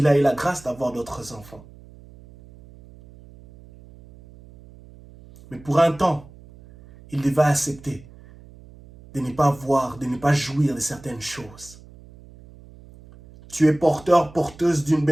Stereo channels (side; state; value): right; noise; hum, 22 dB below the sound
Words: a eu la grâce d'avoir d'autres enfants. Mais pour un temps, il devait accepter de ne pas voir, de ne pas jouir de certaines choses. Tu es porteur, porteuse d'une